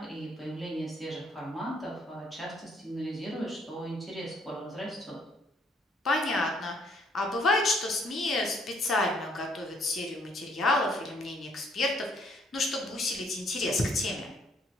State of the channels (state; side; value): normal; both; correlation 0.65